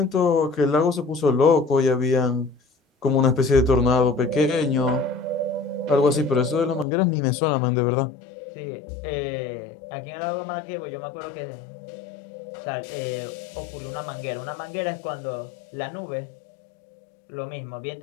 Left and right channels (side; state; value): right; drops out; at 6.9 s